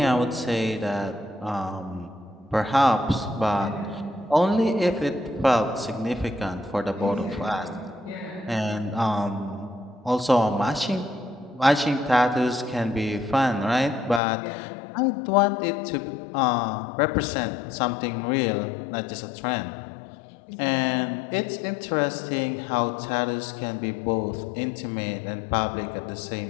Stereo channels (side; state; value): right; drops out; at 14.2 s